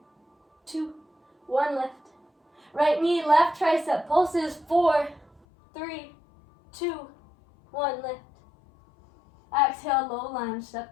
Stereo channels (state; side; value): drops out; right; at 5.4 s